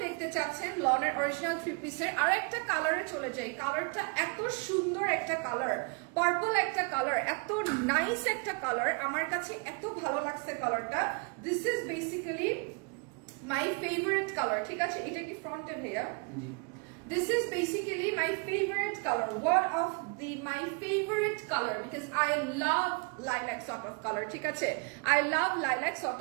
দেখতে চাচ্ছেন লনের অরিজিনাল 3 পিসের, আরেকটা কালারে চলে যাই। কালারটা এত সুন্দর একটা কালার, পার্পল একটা কালার, এত নাইস একটা কালার, আমার কাছে এত ভালো লাগছে কালারটা। This is basically my favorite color, ঠিক আছে? এটা কি ফ্রন্টে ভাইয়া? This is basically my favorite color, one of my favorite color, because I love lilac sort of color, ঠিক আছে? I love lilac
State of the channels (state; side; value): quieter; left; 32.6 dB